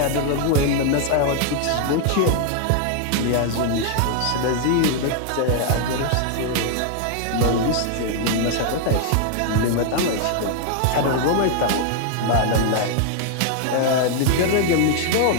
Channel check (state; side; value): different; both; correlation 0.00